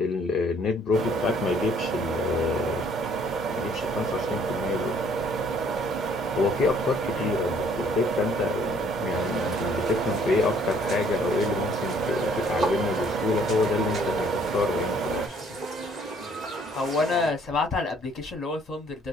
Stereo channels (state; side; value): normal; both; correlation 0.61